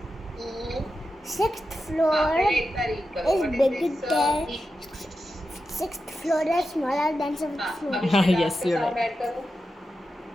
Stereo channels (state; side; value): normal; both; correlation 0.90